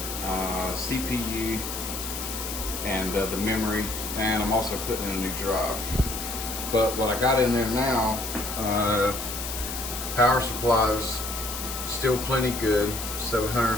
CPU, and the memory, and I'm also putting in a new drive. But what I got in there now, power supply is still plenty good,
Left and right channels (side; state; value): left; noise; hiss, 6 dB below the sound